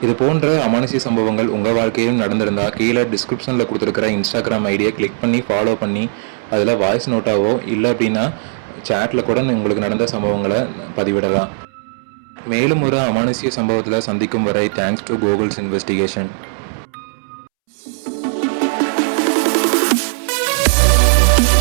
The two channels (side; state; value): left; silent; 68 dB below the other